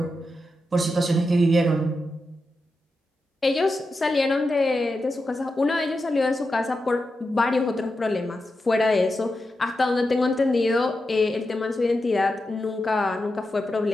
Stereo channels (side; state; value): both; normal; correlation 0.89